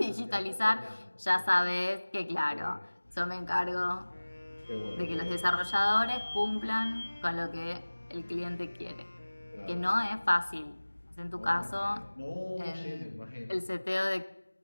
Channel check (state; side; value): inverted; both; correlation -1.00